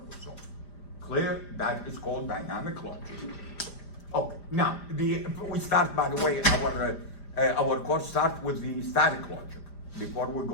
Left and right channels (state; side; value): late; right; 5.0 ms